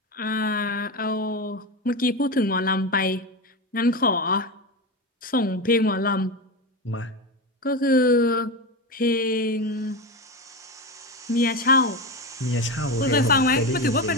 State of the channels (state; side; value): normal; both; correlation 0.19